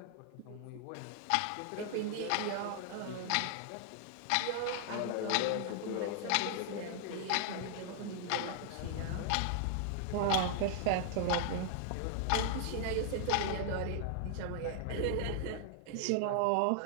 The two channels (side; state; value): both; different; correlation 0.00